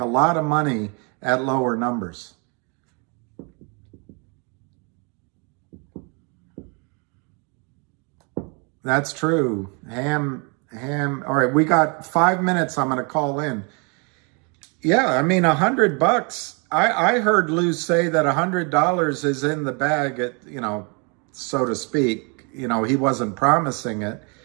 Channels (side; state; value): left; quieter; 34.1 dB